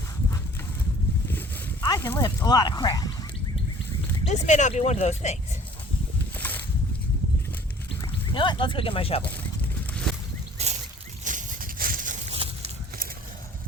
I can lift a lot of crap. This may not be one of those things. You know what? Let's go get my shovel.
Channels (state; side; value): normal; both; correlation 0.51